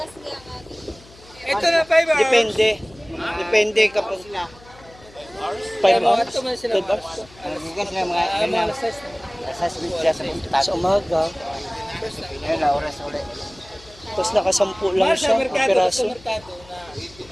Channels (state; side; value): noise; left; hum, 24 dB below the sound